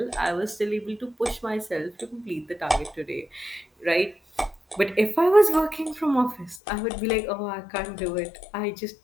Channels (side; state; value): right; drops out; at 6.6 s